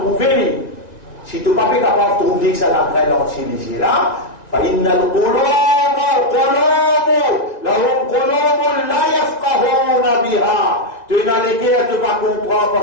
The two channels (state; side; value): late; right; 1.9 ms